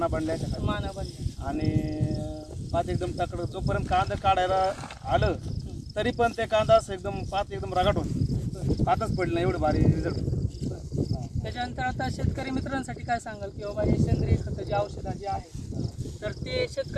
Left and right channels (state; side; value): identical; both; correlation 1.00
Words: बनल्या माना बनल्या आणि पात एकदम तकड। जोपर्यंत कांदा काढायला आलं तरी पण ते कांदा असं एकदम पात एकदम रगाट होती, पातच पडली नाही, एवढं भारी रिझल्ट। त्याच्यानंतर आता शेतकरी मित्रांसाठी काय सांगाल की बाबा हे सेंद्रिय खतं जे औषधं जे आहेत तर ते